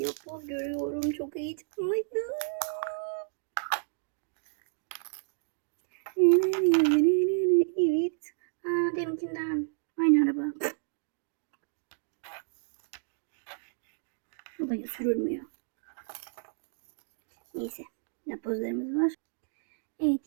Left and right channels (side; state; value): left; silent; digital silence